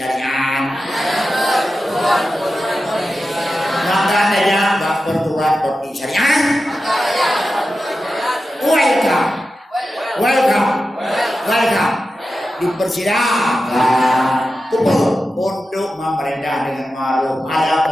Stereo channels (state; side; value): normal; both; correlation 0.92